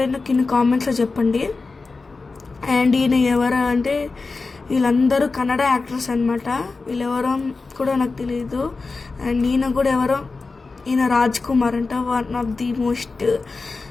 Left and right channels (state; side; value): quieter; right; 4.0 dB